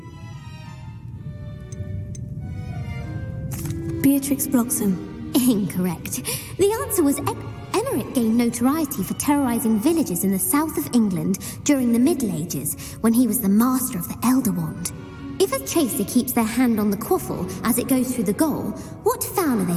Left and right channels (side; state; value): both; identical; correlation 1.00